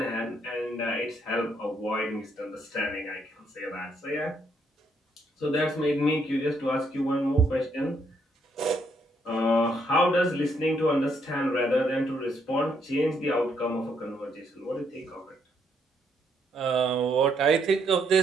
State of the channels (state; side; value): normal; both; correlation 0.73